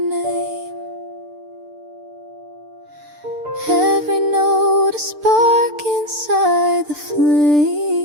every note a spark inside the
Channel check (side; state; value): left; late; 6.7 ms